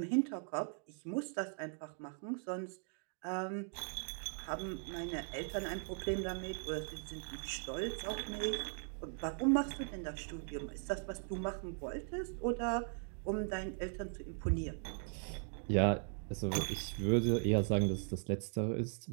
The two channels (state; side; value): silent; left; 52 dB below the other